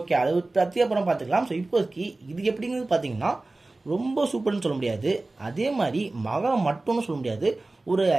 ஓகே, அதை பற்றி அப்புறம் பார்த்துக்கலாம். ஸோ இப்போதைக்கு இது எப்படிங்கிறது பார்த்தீங்கன்னா ரொம்ப சூப்பர்னு சொல்ல முடியாது, அதே மாதிரி மகா மட்டும்னு சொல்ல முடியாது. ஒரு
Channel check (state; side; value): quieter; left; 3.1 dB